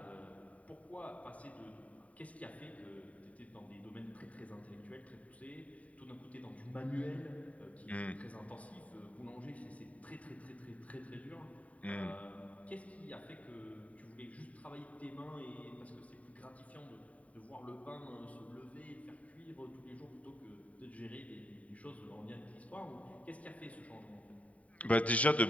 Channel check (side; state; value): right; late; 0.068 ms